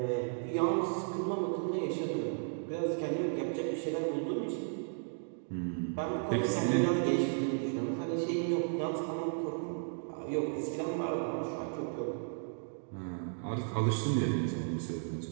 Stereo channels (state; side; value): silent; left; digital silence